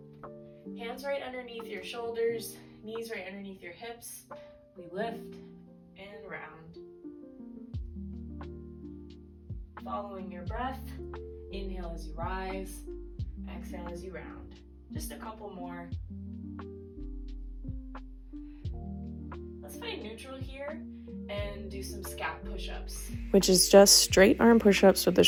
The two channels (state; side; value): identical; both; correlation 1.00